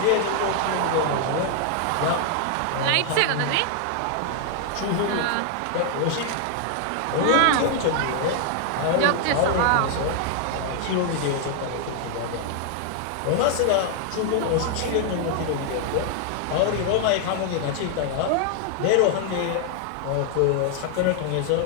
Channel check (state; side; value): different; both; correlation 0.00